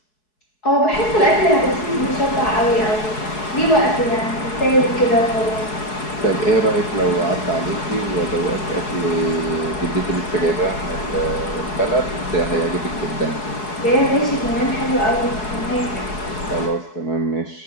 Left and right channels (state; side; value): late; right; 4.7 ms